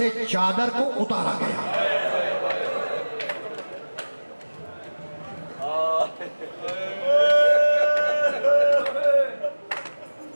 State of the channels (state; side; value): inverted; both; correlation -1.00